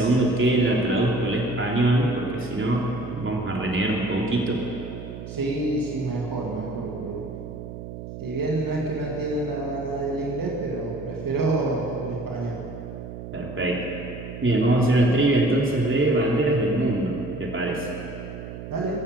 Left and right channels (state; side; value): noise; right; hum, 10 dB below the sound